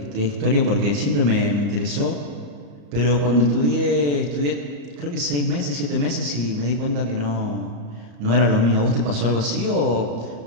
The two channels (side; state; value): left; late; 34 ms